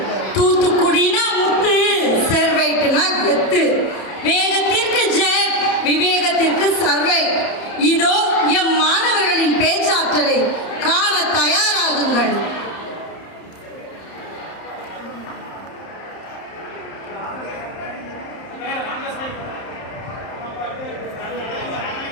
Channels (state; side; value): late; right; 31 ms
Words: தூத்துக்குடினா முத்து, செர்வைட்னா கெத்து, வேகத்திற்கு ஜெட், விவேகத்திற்கு சர்வைட். இதோ எம் மாணவர்களின் பேச்சாற்றலை காண தயாராகுங்கள்.